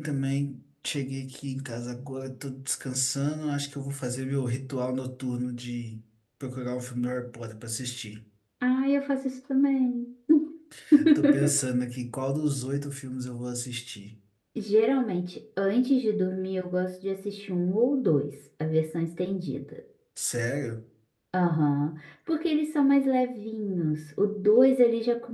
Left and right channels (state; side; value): identical; both; correlation 1.00